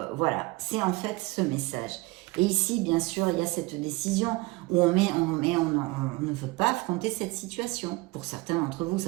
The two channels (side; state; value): left; quieter; 22.7 dB